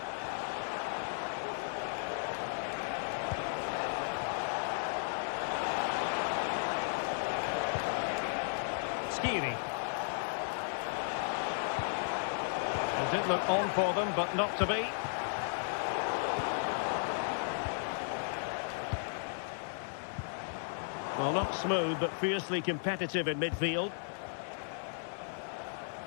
Skiri. It did look on for them, but not to be. Well, not smooth, but fiercely competitive in midfield.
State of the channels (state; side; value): silent; right; digital silence